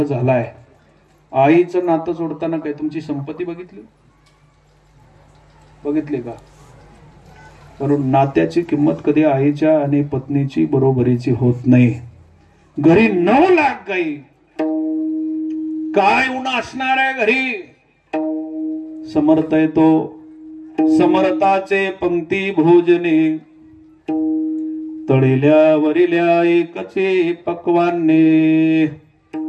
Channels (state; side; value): identical; both; correlation 1.00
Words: झालाय. आईचं नातं जोडताना काय तुमची संपत्ती बघितली का. कारण नात्याची किंमत कधी आईच्या आणि पत्नीची बरोबरीची होत नाही. घरी 9 लाख गाई, काय उन्हा असणार आहे घरी. समर्थ येतो समर्थाचे पंक्ती भोजने, तळिल्या वरिल्या एकचे पक्वाने.